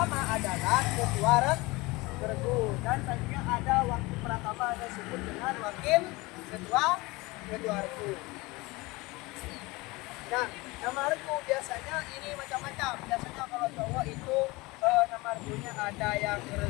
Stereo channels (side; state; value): right; quieter; 22.9 dB